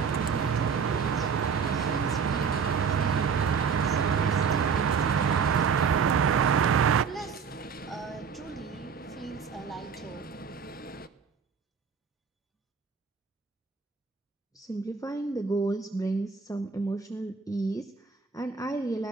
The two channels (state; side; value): quieter; left; 6.0 dB